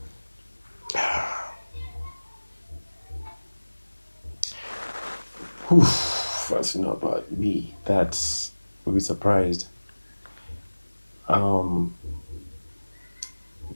Fans to know about me. That will be surprised.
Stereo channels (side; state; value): both; inverted; correlation -1.00